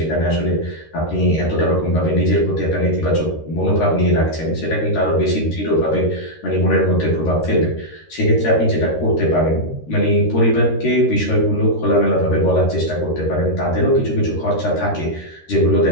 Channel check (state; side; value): late; right; 13 ms